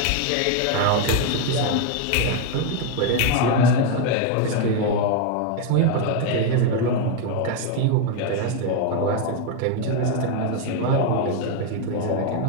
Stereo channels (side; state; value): both; different; correlation 0.01